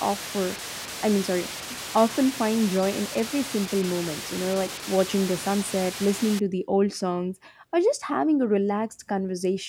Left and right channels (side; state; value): both; identical; correlation 1.00